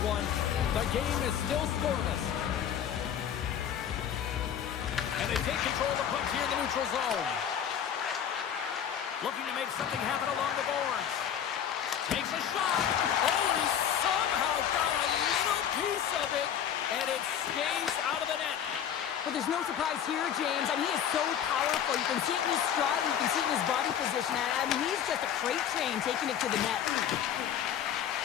one. The game is still scoreless. And they take control of the puck here in the neutral zone. Looking to make something happen along the boards. Takes a shot. Oh, and he somehow got a little piece of it, and it stays out of the net. But there's no surprise here, James. I mean, he is so powerful. You can see it in his stride. You can see it in his body position. I mean, he's just a freight train taking it to the net.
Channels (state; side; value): quieter; right; 9.2 dB